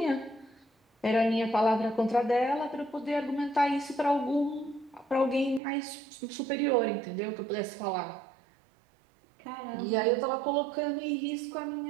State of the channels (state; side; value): drops out; left; at 5.6 s